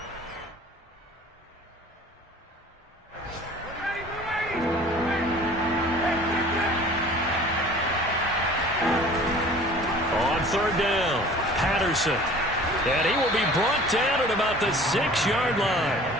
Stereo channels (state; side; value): normal; both; correlation 0.46